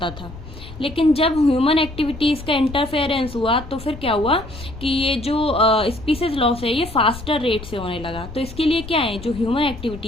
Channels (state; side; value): noise; left; rumble, 14 dB below the sound